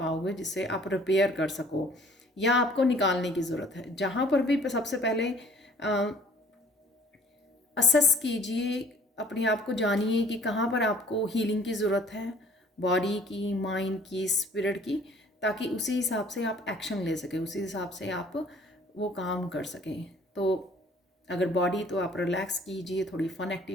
जिससे आप रिपेयर कर सको या आपको निकालने की ज़रूरत है। जहाँ पर भी सबसे पहले असेस कीजिए, अपने आप को जानिए कि कहाँ पर आपको हीलिंग की ज़रूरत है, बॉडी की, माइंड की, स्पिरिट की, ताकि उसी हिसाब से आप एक्शन ले सकें, उसी हिसाब से आप वो काम कर सकें। तो अगर बॉडी तो आप रिलैक्स कीजिए, थोड़ी फन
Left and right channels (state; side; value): normal; both; correlation 0.55